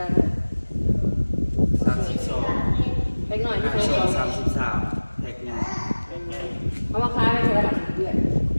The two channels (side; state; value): both; inverted; correlation -1.00